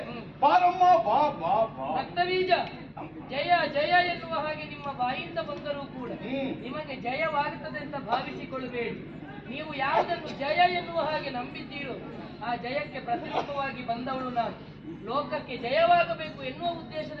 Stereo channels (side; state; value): both; identical; correlation 1.00